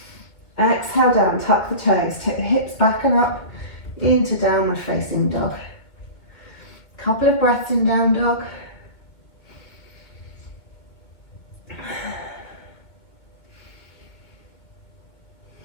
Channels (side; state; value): right; late; 2.2 ms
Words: Exhale down, tuck the toes, take the hips back and up into downward facing dog. Couple of breaths in down dog.